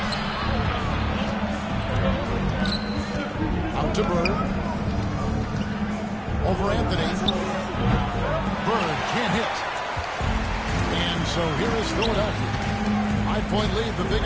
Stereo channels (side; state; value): both; identical; correlation 1.00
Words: Out to Bird. Over Anthony. Bird can't hit. And so here is Philadelphia. 5-point lead, the